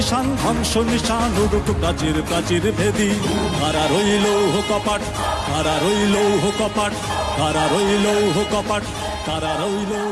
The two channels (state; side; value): identical; both; correlation 1.00